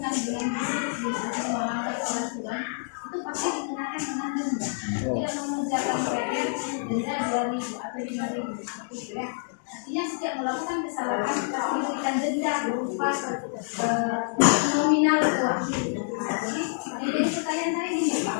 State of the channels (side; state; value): right; silent; digital silence